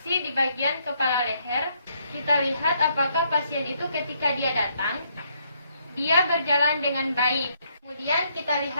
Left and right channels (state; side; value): inverted; both; correlation -0.72